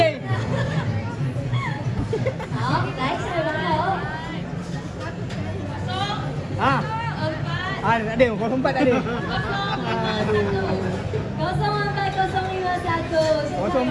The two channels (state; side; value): identical; both; correlation 1.00